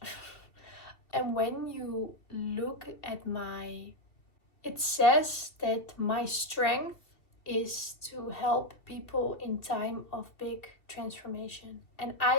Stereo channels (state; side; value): late; right; 2.7 ms